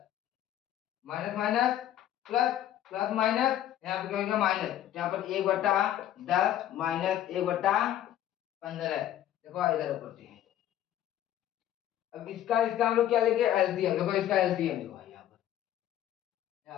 minus minus plus, plus minus यहाँ पे क्या होगा माइनस, यहाँ पर 1/10 -1/15। देखो इधर ऊपर से, अब इसका इसका हम लोग क्या लेंगे एलसीएम। देखो इसका एलसीएम देखो भाई यहाँ पर,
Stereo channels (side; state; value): right; quieter; 11.9 dB